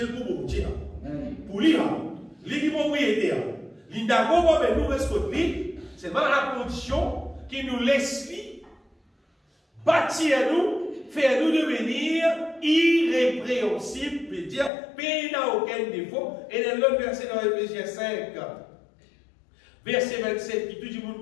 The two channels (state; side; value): drops out; right; at 14.7 s